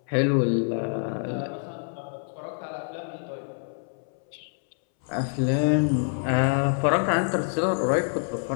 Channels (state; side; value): silent; right; 61 dB below the other